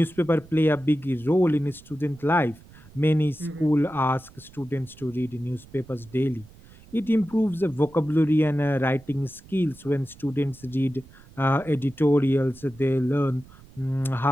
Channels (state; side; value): noise; right; rumble, 23 dB below the sound